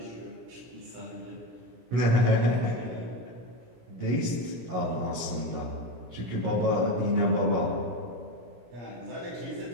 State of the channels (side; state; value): left; late; 16 ms